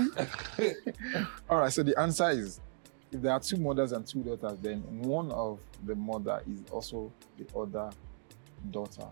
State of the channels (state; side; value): silent; left; digital silence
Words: All right, so the answer is, if there are 2 mothers and 2 daughters, then one of the mother is also the other daughter